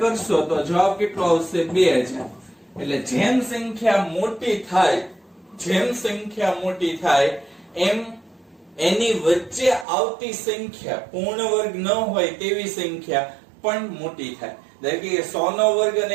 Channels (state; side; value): drops out; left; at 9.9 s